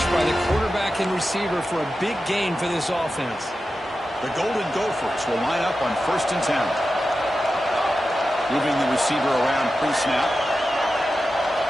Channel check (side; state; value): both; normal; correlation 0.92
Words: by the quarterback and receiver for a big gain for this offense. The Golden Gophers will line up on 1st and 10. Moving the receiver around pre-snap.